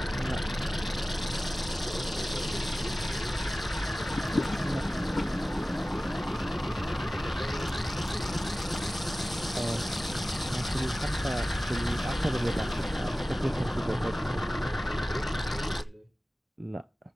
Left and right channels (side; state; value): both; normal; correlation 0.96